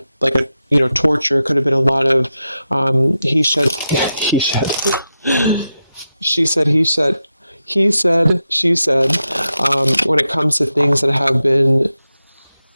torture, could have been a lot of he said, she said, he said, he said, she said, when it comes to things that have been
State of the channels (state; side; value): inverted; both; correlation -0.89